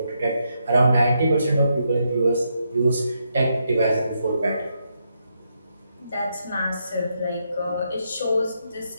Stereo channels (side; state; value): both; inverted; correlation -0.80